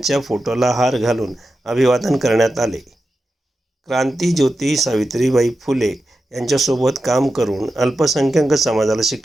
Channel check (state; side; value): normal; both; correlation 0.91